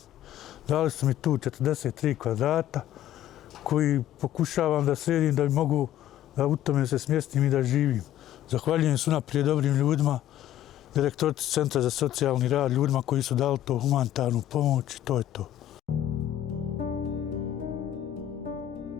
Dali su mi tu 43 kvadrata koji pokušavam da sredim da mogu da u tome se smjestim i da živim. Zahvaljujem se unaprijed dobrim ljudima, direktorici Centra za socijalni rad, ljudima koji su dali to humanitarnu pomoć i to je to.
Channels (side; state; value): right; quieter; 12.2 dB